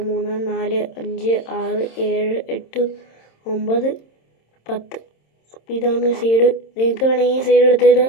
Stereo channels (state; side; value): late; right; 26 ms